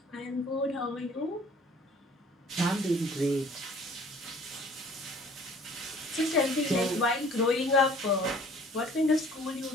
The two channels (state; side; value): normal; both; correlation 0.52